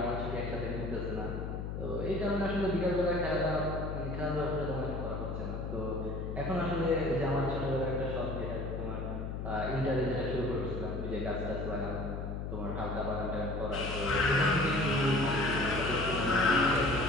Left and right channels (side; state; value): left; noise; hum, 5 dB below the sound